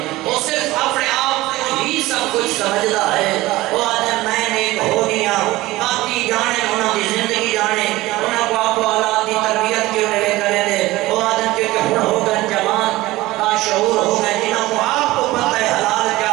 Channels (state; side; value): quieter; left; 18.3 dB